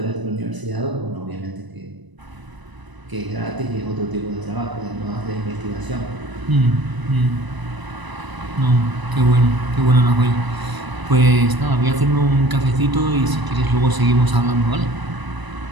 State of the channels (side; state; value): left; late; 1.0 ms